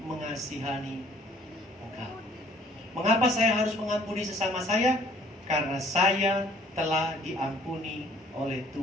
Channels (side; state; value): both; normal; correlation 0.58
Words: mengasihani engkau. Mengapa saya harus mengampuni sesama saya? Karena saya telah diampuni oleh